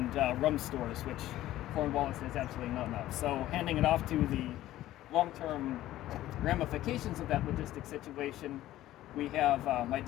rum stores, which Cornwallis has absolutely none of. So, handing it off to the long-term ramifications of that logistic situation, we have my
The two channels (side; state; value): right; quieter; 14.5 dB